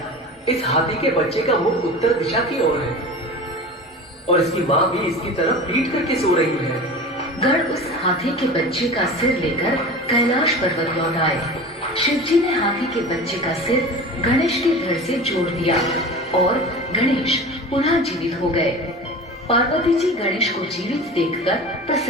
इस हाथी के बच्चे का मुख उत्तर दिशा की ओर है और इसकी माँ भी इसकी तरफ पीट करके सो रही है। गण उस हाथी के बच्चे का सिर लेकर कैलाश पर्वत लौट आए। शिव जी ने हाथी के बच्चे का सिर गणेश के धड़ से जोड़ दिया और गणेश पुनः जीवित हो गए। पार्वती जी गणेश को जीवित देखकर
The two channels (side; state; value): both; normal; correlation 0.34